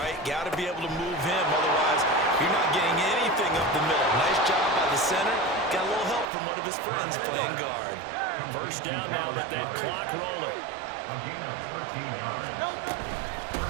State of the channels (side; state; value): left; drops out; at 6.3 s